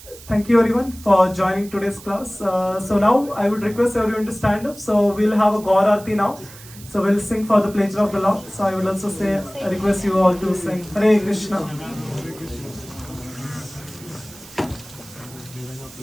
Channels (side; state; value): right; noise; hiss, 19 dB below the sound